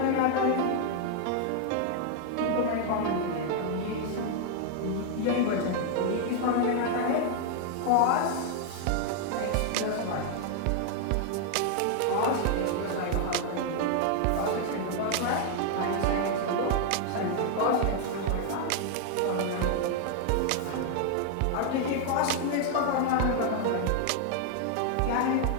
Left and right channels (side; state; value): both; different; correlation 0.00